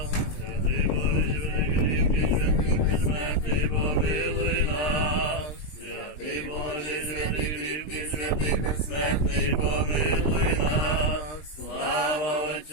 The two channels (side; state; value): right; late; 19 ms